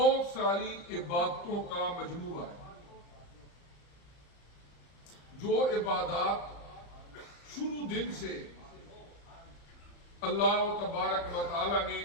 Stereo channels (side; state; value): right; late; 35 ms